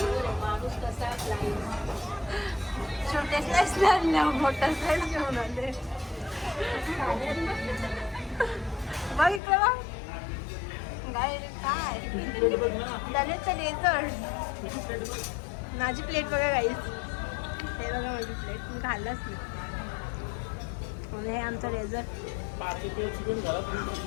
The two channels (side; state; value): right; drops out; at 9.4 s